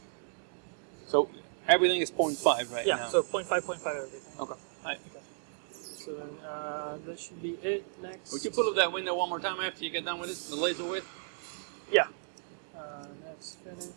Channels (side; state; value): left; silent; digital silence